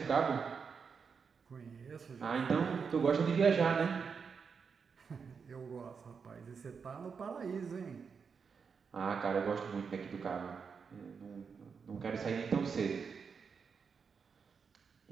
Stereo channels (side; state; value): left; quieter; 5.9 dB